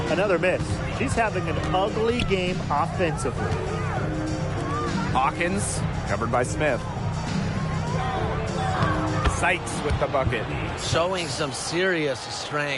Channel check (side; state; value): both; identical; correlation 1.00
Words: Another miss. She's having an ugly game offensively. Hawkins, covered by Smith. Sykes with the bucket. Showing some serious